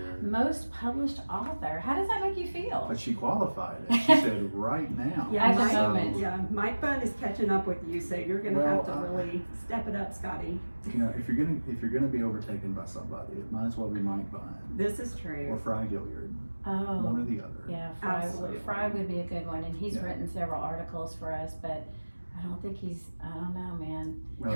Most published author. How does that make you feel? But she qualified it. She said right now. Yeah, At the Mike, moment. yeah, Mike Bunn is catching up with you, so you're gonna Well, have to really step it up, Scotty. You know, if you're gonna be overtaken by somebody, it might as well be Mike Bunn This is or true. Fry Gilliard, one Oh, or the other. yeah, Absolutely. Fry would be a good one, and he's Yeah. written several articles for us, but I don't think I don't know, man.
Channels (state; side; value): inverted; both; correlation -1.00